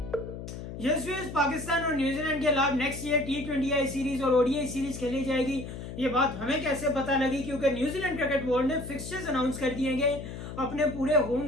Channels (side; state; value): left; noise; hum, 9 dB below the sound